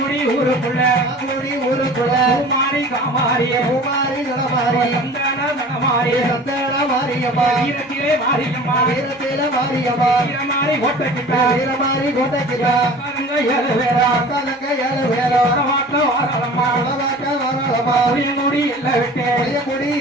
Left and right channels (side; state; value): both; normal; correlation 0.43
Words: ஊருக்குள்ள அங்கூடி ஊருக்குள்ள பூமாரி காமாரி பூமாரி நடமாரி சந்தன நடமாரி சந்தன மாரியம்மா வீரத்திலே மாரியம்மா வீரத்தில மாரியம்மா வீரமாரி ஓட்டக்கிட்ட வீரமாரி கோட்டைக்கிட்ட அக்காரங்க 7 பேரா அக்காலங்க 7 பேரும் வடவாக்க வாராளம்மா வடவாக்க வாராளம்மா புளியங்குடி எல்லாம் விட்டு புளியங்குடி